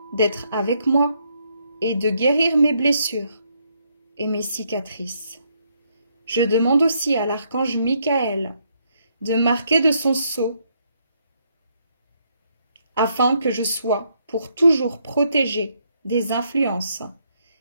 d'être avec moi et de guérir mes blessures et mes cicatrices. Je demande aussi à l'archange Michael de marquer de son sceau afin que je sois pour toujours protégée des influences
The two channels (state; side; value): inverted; both; correlation -0.74